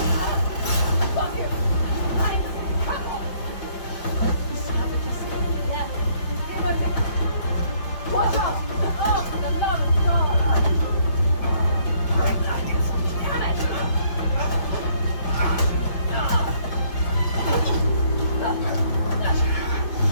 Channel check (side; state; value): right; late; 5.4 ms